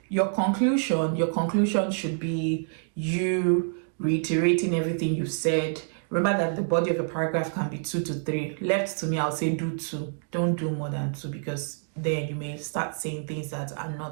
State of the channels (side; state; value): left; silent; digital silence